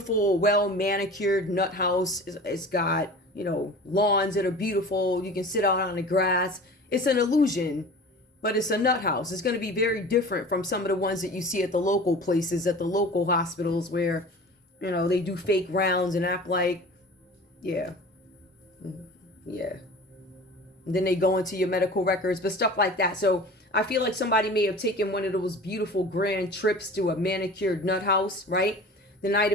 well-manicured nut house. It's got, lawns that are beautiful. You can sit out on the grass. It's an illusion, but it's a nut house. It's going to be very different from some of the ones that you see at the local places, at the local hospitals where, they do fake rounds and act like, yeah. And then they go into your medical records, but stuff like that. So I feel like somebody may have taken one of those beautiful grand trips to a manicured nut house, right? The Knight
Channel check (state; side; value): normal; both; correlation 0.39